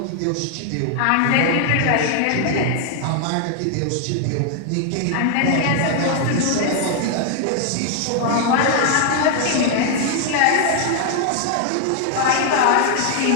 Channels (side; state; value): both; different; correlation 0.00